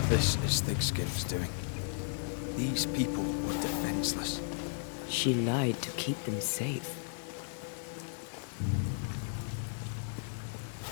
This is Thickskin's doing. These people were defenseless. She lied to keep them safe.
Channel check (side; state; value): right; silent; digital silence